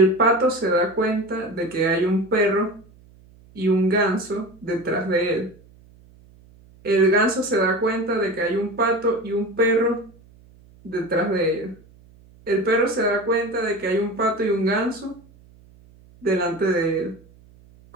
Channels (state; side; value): noise; right; hum, 26 dB below the sound